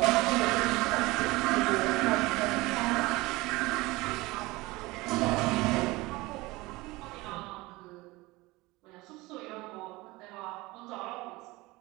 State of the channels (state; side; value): quieter; left; 21.5 dB